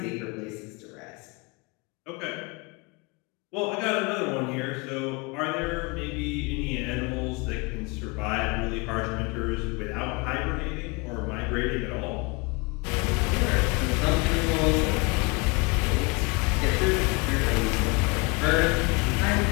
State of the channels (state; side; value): quieter; right; 27.9 dB